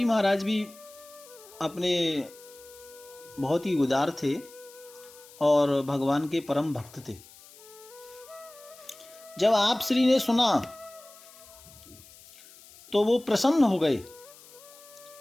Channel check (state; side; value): noise; left; hiss, 22 dB below the sound